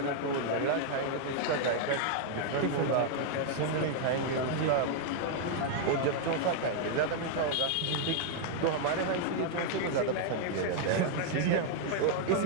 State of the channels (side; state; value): both; different; correlation 0.00